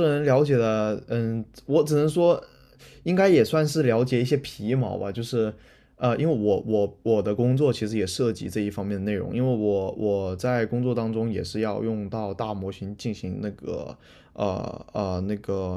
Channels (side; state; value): both; identical; correlation 1.00